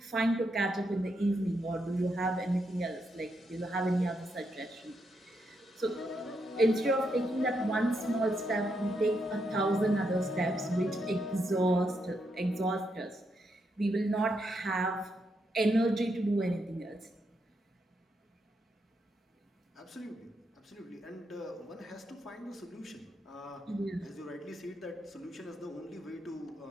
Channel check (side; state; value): both; normal; correlation 0.80